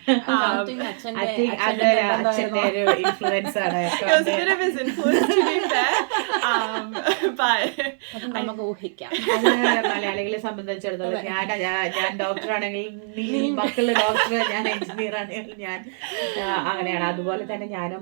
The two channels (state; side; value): silent; left; 63 dB below the other